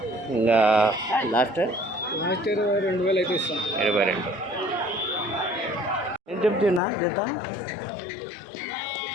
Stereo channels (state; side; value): drops out; right; at 6.8 s